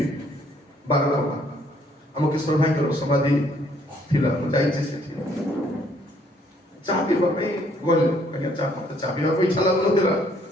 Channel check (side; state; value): both; normal; correlation 0.65